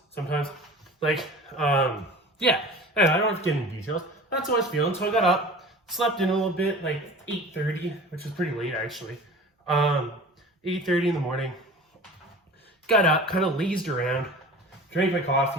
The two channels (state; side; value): normal; both; correlation 0.39